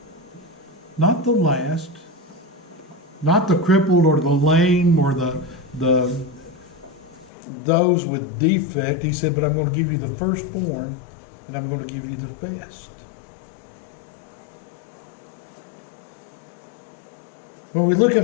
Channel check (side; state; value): right; drops out; at 7.3 s